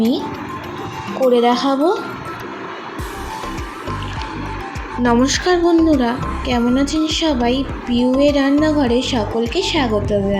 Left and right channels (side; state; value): both; identical; correlation 1.00